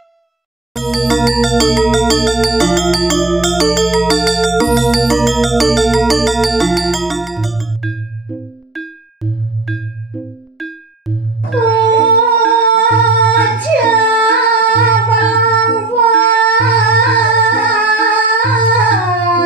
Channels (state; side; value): quieter; left; 3.1 dB